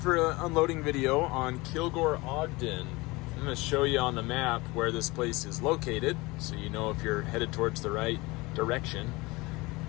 an unloading video on Kilgore Ogden. I'm going to show you on the map where this place is located, so you know if you're headed towards the right direction.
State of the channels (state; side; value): quieter; right; 23.0 dB